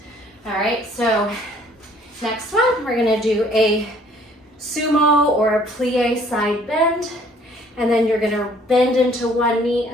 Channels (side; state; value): both; normal; correlation 0.59